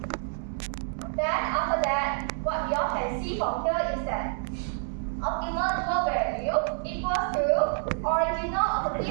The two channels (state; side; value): silent; left; digital silence